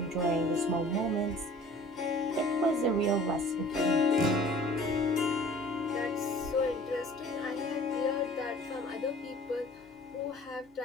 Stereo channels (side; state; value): both; normal; correlation 0.48